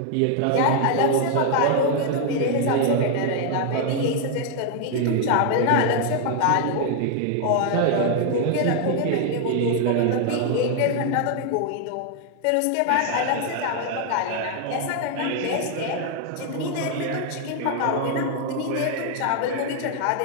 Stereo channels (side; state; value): both; different; correlation 0.00